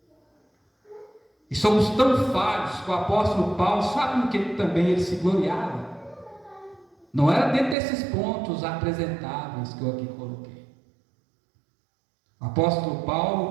E somos tão falhos que o apóstolo Paulo, sabe no que também ele se gloriava? Não era dentro desses pontos apresentáveis que eu aqui coloquei. O apóstolo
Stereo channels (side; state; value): left; drops out; at 7.8 s